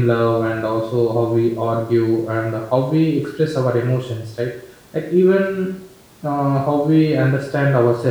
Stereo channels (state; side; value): identical; both; correlation 1.00